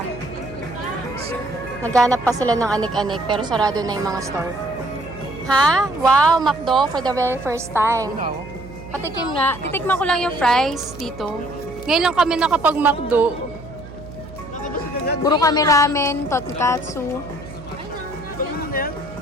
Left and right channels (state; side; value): noise; right; hum, 15 dB below the sound